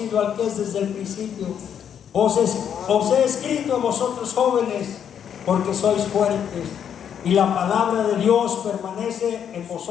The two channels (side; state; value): right; quieter; 8.6 dB